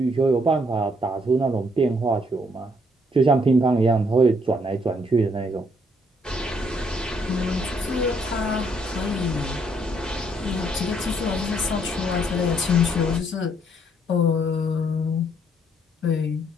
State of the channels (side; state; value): both; normal; correlation 0.69